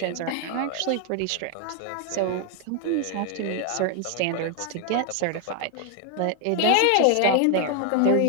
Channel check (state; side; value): different; both; correlation 0.01